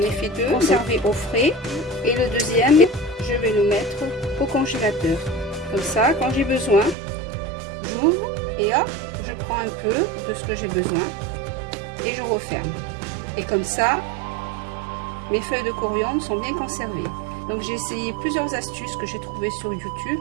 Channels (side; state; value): left; drops out; at 7.0 s